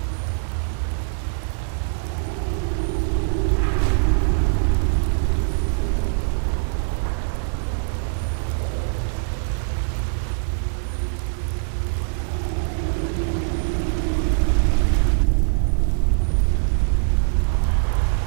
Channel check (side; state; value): left; silent; digital silence